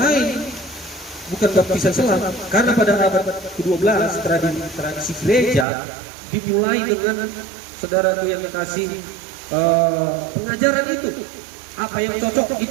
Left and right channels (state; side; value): drops out; left; at 5.7 s